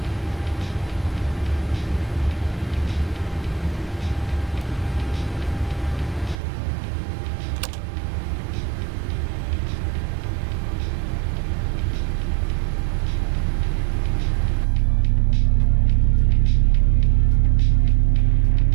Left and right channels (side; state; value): left; drops out; at 6.4 s